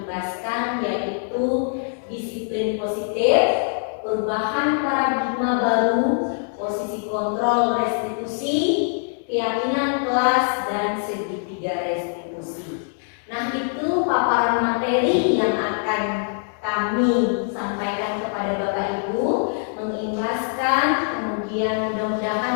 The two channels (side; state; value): right; silent; 61 dB below the other